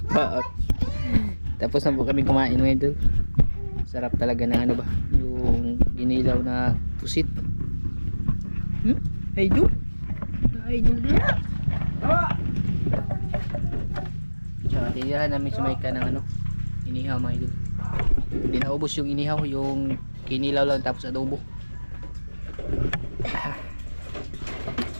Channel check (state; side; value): inverted; both; correlation -1.00